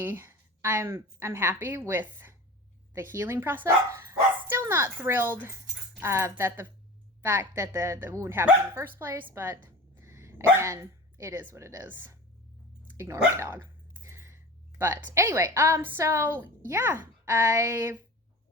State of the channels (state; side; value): normal; both; correlation 0.34